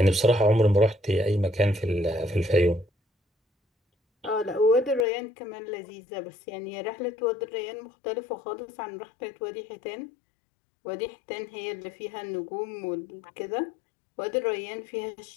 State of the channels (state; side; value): drops out; right; at 5.1 s